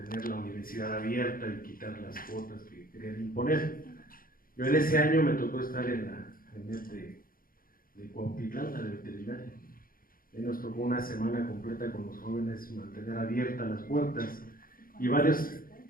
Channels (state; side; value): late; right; 0.42 ms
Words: la universidad abierta y quitar las cuotas que querían imponer. Yo en ese año me tocó estar en de Cuautitlán, la de veterinaria. Y nos tocó una semana completa con los jóvenes mantener abiertas las puertas y varios